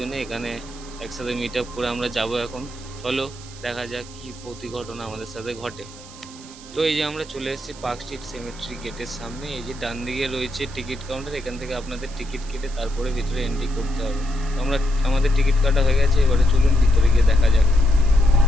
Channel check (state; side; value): noise; right; hiss, 18 dB below the sound